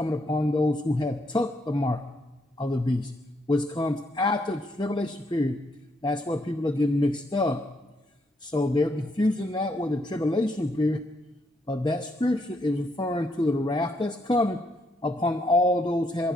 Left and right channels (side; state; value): both; normal; correlation 0.75